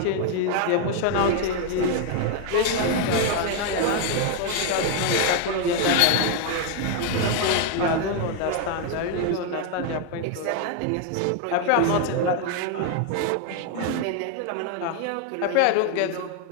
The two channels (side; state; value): both; different; correlation 0.01